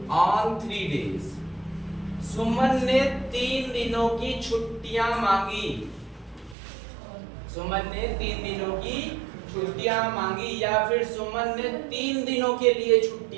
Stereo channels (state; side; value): drops out; left; at 6.6 s